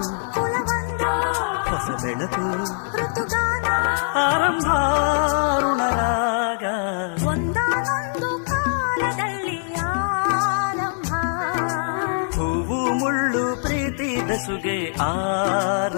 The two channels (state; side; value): silent; right; digital silence